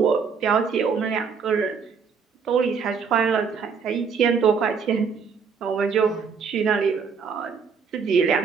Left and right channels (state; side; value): quieter; left; 5.9 dB